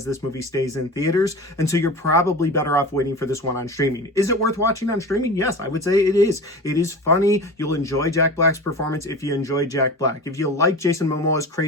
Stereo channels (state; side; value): normal; both; correlation 0.32